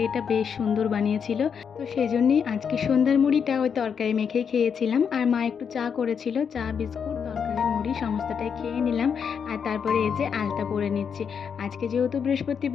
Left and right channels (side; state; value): right; quieter; 6.9 dB